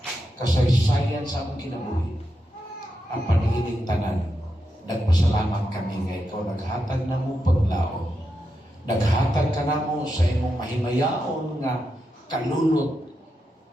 kasaysayan sa among kinabuhi. Ang panigining tanan, nagpasalamat kami nga ikaw naghatag namo paglaom. Naghatag ka namo sa imong mahimayaon nga kalulot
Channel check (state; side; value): normal; both; correlation 0.86